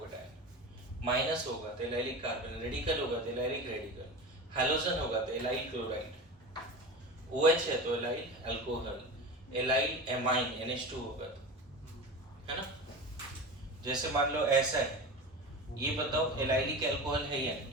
माइनस होगा तो एलाइलिक कार्बन, रेडिकल होगा तो एलाइलिक रेडिकल, हैलोजन होगा तो एलाइल क्लोराइड, OH है तो allyl alcohol, allyl amine NH2 होगा तो, है ना। जैसे मान लो ऐसा है, ये बताओ एलाइलिक अल्कोहल है या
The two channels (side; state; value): both; normal; correlation 0.29